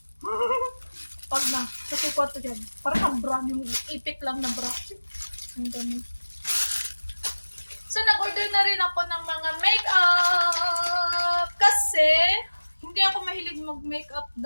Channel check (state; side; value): inverted; both; correlation -1.00